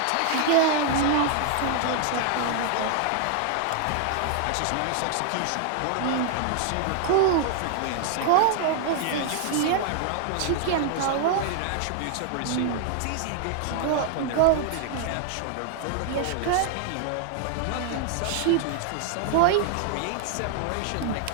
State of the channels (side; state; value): both; different; correlation 0.00